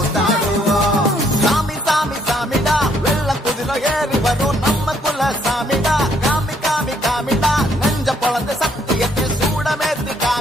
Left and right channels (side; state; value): both; normal; correlation 0.68